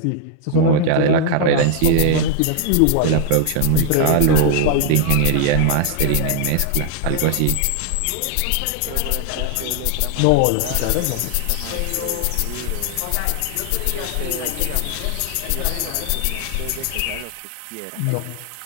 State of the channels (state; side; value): different; both; correlation 0.00